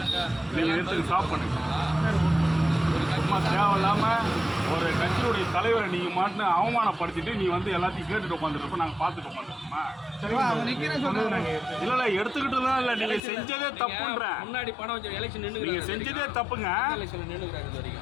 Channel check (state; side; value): drops out; right; at 13.2 s